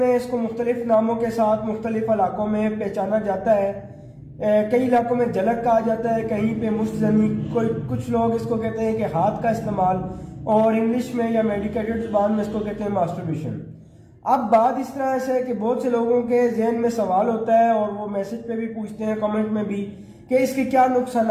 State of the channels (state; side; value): identical; both; correlation 1.00